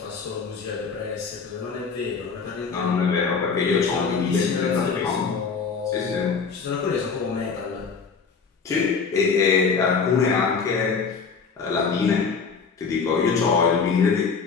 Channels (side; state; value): right; quieter; 5.4 dB